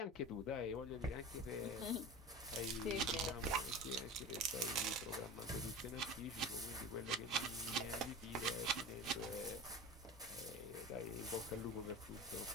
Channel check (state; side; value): normal; both; correlation 0.33